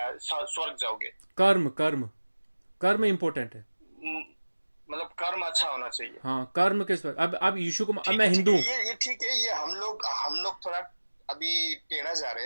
जाओगे। कर्म कर्म कर्म इंपॉर्टेंट है। म- मतलब कर्म अच्छा होना चाहिए। हाँ, कर्म किस पर, अब यीशु को, अब ठीक मैं है, ठीक हिंदू है, हूँ। ये ठीक है। ये हम लोग थोड़ा अभी टेढ़ा जा रहे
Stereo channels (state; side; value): inverted; both; correlation -1.00